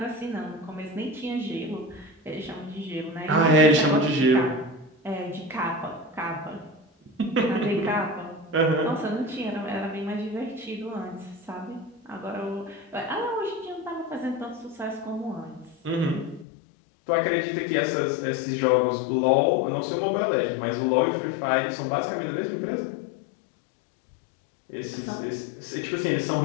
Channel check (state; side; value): drops out; right; at 16.4 s